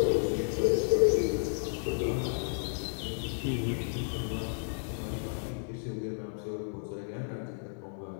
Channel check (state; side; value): silent; right; digital silence